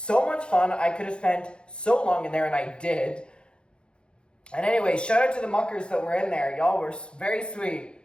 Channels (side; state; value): right; late; 0.053 ms